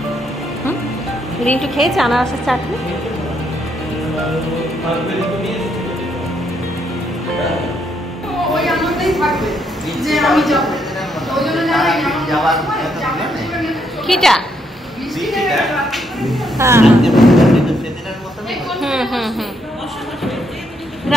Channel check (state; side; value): noise; right; hum, 29 dB below the sound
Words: রিন্টু খেয়েছে আনারসের চাটনি? কিটা?